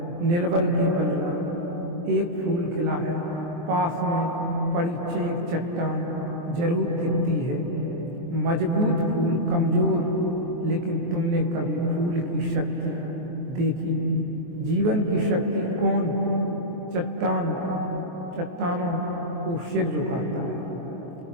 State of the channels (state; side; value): late; left; 23 ms